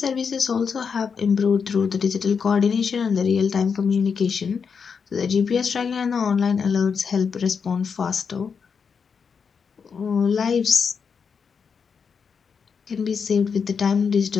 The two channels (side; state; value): right; quieter; 6.1 dB